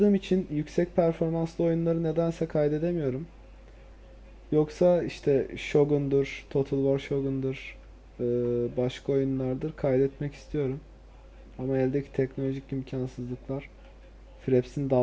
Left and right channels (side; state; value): both; identical; correlation 1.00